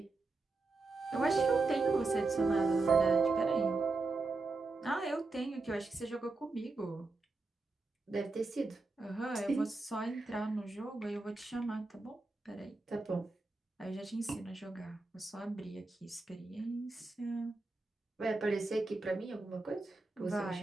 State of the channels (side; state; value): left; quieter; 3.5 dB